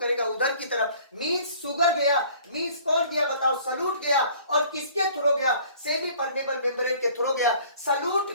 उधर की तरफ, मींस शुगर गया, मींस कौन गया बताओ, सलूट गया, और किसके थ्रू गया, सेमी परमेबल मेम्ब्रेन के थ्रू गया।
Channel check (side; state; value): both; inverted; correlation -0.52